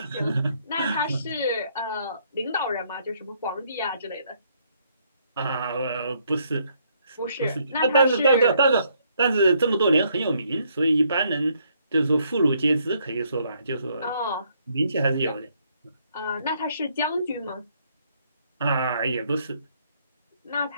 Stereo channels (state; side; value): inverted; both; correlation -0.70